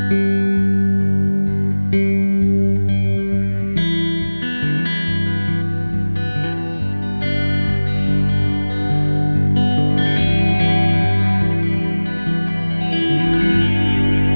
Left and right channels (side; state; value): both; inverted; correlation -1.00